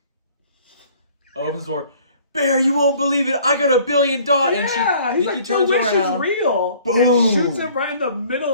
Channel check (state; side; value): inverted; both; correlation -0.54